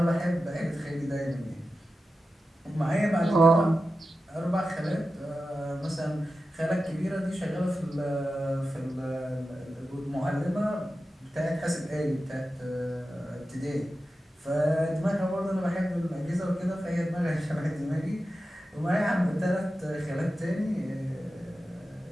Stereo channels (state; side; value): normal; both; correlation 0.92